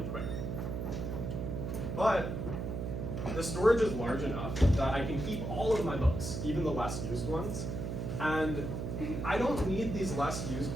quick. But the storage is large enough that I can keep all of my books, even the less used ones. And I don't need these less used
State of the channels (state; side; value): noise; right; hum, 4 dB below the sound